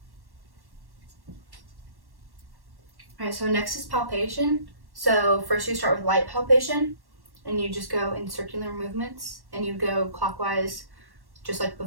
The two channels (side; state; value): left; late; 1.1 ms